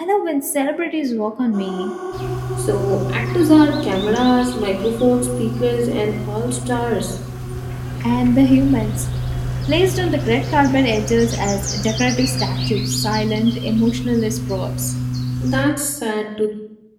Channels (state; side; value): identical; both; correlation 1.00